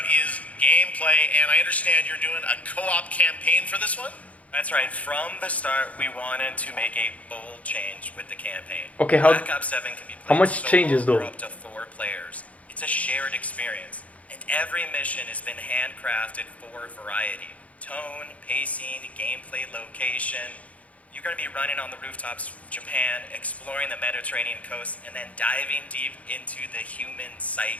is gameplay, and I understand you're doing a co-op campaign for this one? That's right. From the start, we wanted to make a bold change with the campaign. Okay, how- Black Ops 7 can be played how much solo changes, though? or up to 4 players. It's a shared experience, and every mission has been handcrafted for variety. Tone, pacing, gameplay location. You're going to be running on the rooftops of Japan, exploring the Mediterranean coast, and then diving deep into the human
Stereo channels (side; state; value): right; late; 0.067 ms